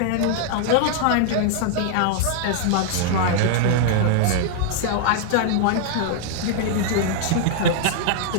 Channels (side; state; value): both; different; correlation -0.01